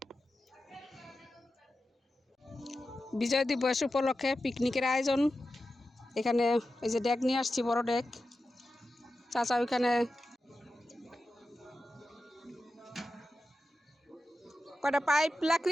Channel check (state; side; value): normal; both; correlation 0.92